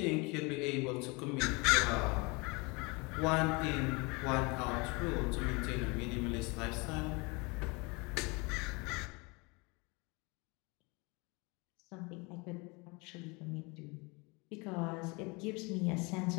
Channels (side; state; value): right; quieter; 27.9 dB